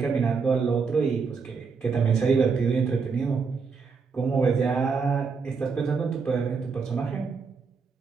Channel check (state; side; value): quieter; left; 5.2 dB